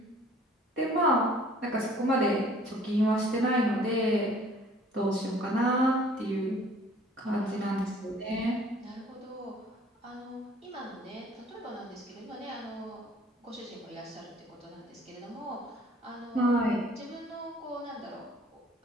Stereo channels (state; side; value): normal; both; correlation 0.54